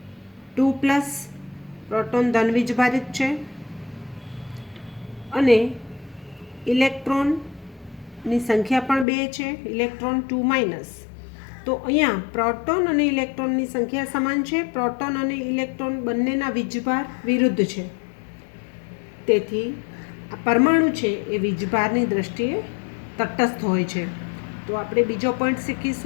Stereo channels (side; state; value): right; drops out; at 9.1 s